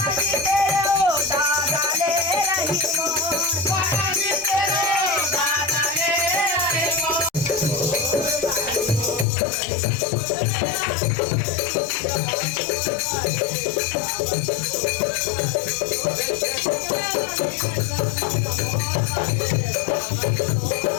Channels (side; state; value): right; drops out; at 9.2 s